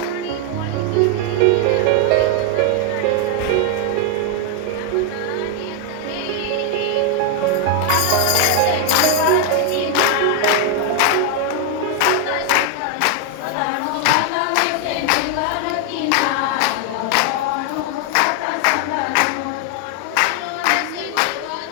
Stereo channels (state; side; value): different; both; correlation 0.00